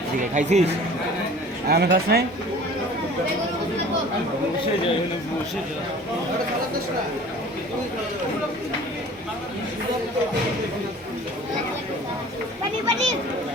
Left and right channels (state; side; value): normal; both; correlation 0.45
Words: ঠিক আছে খাইছিস আমি খাস নাই বসে যাই বসে যাই